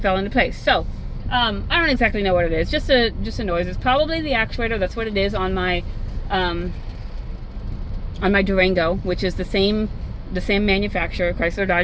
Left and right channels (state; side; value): identical; both; correlation 1.00